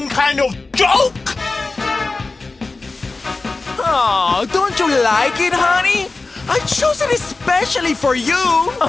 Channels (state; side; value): quieter; right; 3.6 dB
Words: kind of joke? Oh, don't you like it, honey? I chose it especially for you.